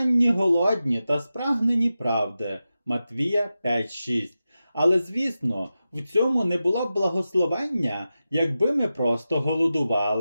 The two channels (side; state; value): both; inverted; correlation -0.92